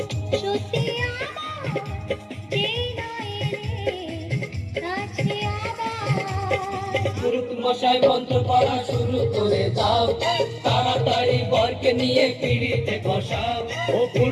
সত্যি আমার যেই নয় রে কাছে আবার পুরুত মশাই মন্ত্র পড়া শুরু করে দাও তাড়াতাড়ি বরকে নিয়ে পিড়িতে বসাও ও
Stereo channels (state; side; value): identical; both; correlation 1.00